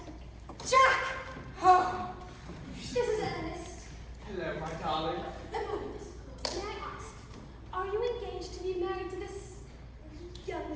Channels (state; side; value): identical; both; correlation 1.00